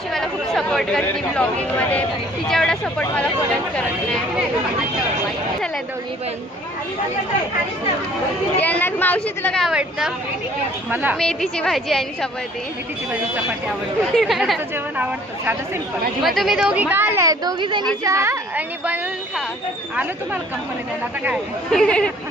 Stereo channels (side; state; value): both; normal; correlation 0.55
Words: मला खूप सपोर्ट करते ब्लॉगिंगमध्ये. तिच्या एवढा सपोर्ट मला कोणच करत नाही. चला दोघी पण. यांना मावशी तुला काय आवडतं. मला मेथीची भाजी आणि चपाती. मेथीची भाजी चपाती आवडते. जेवण आवडतं साधं सिंपल. मग तुम्ही दोघी का आलाय. दोघी जणी चहा आणि बनवून खा. आलं तुम्हाला कंपनी द्यायला आता काय.